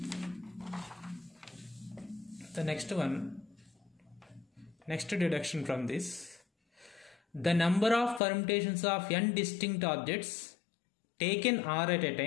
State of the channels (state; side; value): drops out; right; at 8.2 s